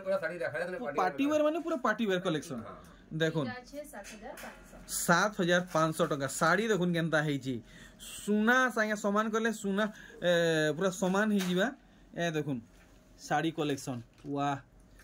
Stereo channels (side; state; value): both; identical; correlation 1.00